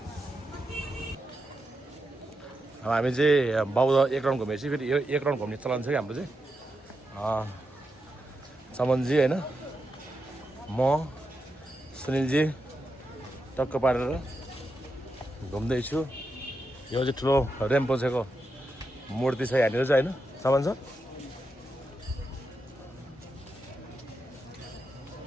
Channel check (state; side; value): normal; both; correlation 0.86